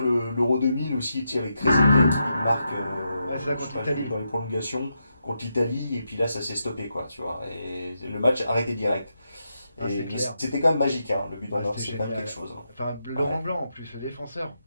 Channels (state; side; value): inverted; both; correlation -0.84